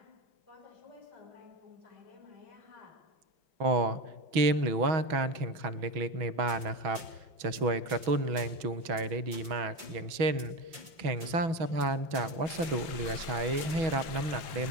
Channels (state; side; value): late; left; 5.7 ms